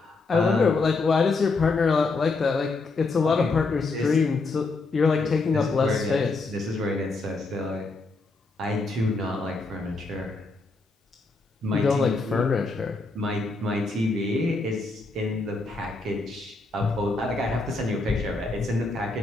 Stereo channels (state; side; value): quieter; right; 3.7 dB